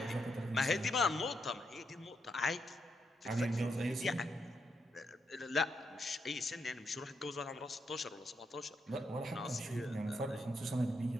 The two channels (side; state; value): both; normal; correlation 0.80